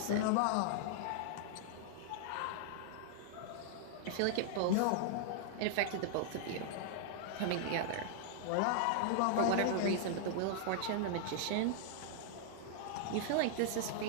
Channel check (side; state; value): both; different; correlation -0.01